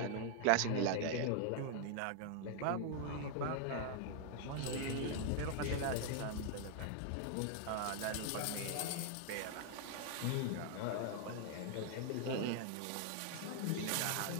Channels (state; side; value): different; both; correlation 0.00